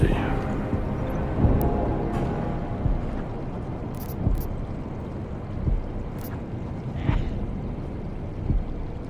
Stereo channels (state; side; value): identical; both; correlation 1.00